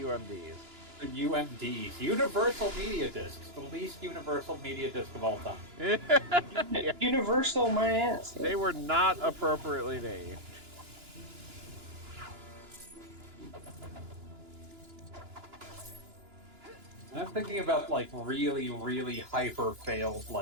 The UMDs. Universal Media Discs. The least universal media disc of all time. Yeah. Universal my ass. They were not appropriately named. I'm thinking about like really, really hyper failed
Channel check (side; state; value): left; late; 2.9 ms